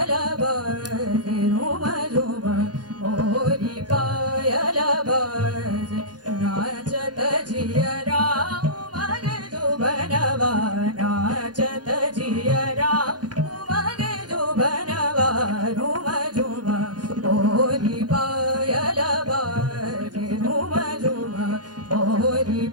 बाजे झुम झुम मोरी पायल बाजे नाचत जियरा उमग जुबनवा नाचत जियरा उमग जुबनवा झुम झुम मोरी पायल बाजे झुम झुम मोरी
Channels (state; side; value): late; left; 0.69 ms